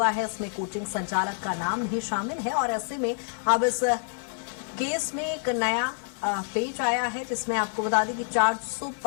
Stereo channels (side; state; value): right; silent; 56 dB below the other